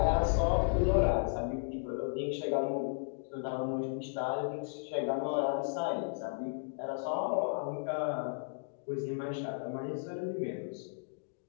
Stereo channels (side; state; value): right; silent; digital silence